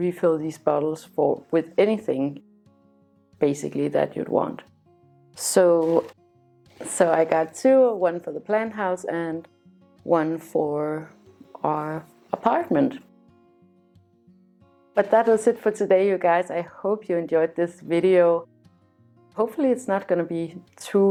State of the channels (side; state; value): both; identical; correlation 1.00